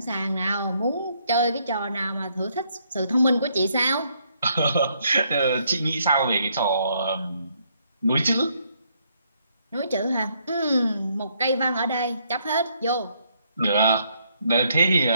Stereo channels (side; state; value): both; inverted; correlation -0.72